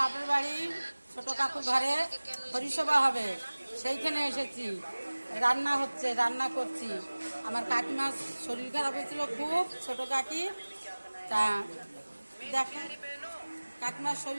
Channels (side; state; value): both; inverted; correlation -1.00